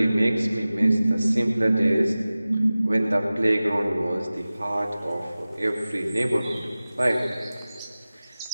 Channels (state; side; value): inverted; both; correlation -0.97